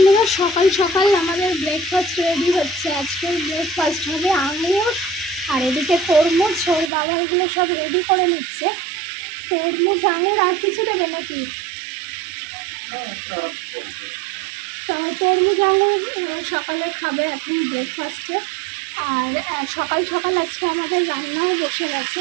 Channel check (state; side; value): drops out; left; at 6.9 s